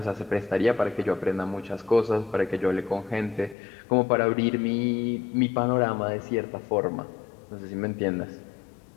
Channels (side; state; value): right; drops out; at 3.6 s